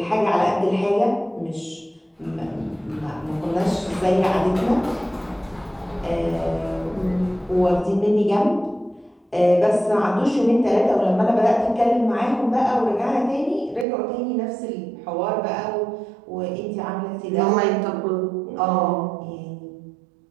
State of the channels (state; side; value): drops out; left; at 13.9 s